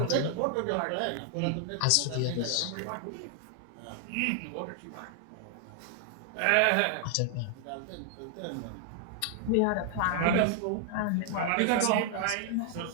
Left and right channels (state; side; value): different; both; correlation 0.00